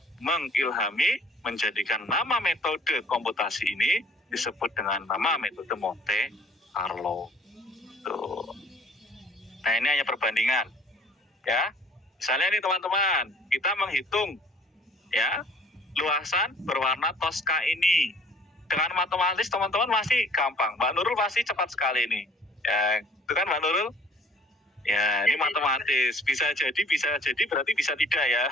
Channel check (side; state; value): both; normal; correlation 0.54